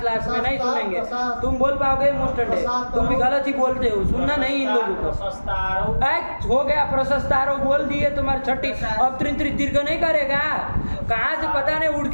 में नहीं सुनेंगे। तुम बोल पाओगे मुस्टंडे, तुम भी गलत ही बोलते हो, सुनना नहीं इन लोगों को। हो गया प्रशस्तारो बोल दिए, तुम्हारी छठी। अब त्रिंत्रित दीर्घ नहीं करेगा, कहाँ से पता नहीं उड़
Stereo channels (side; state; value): both; inverted; correlation -1.00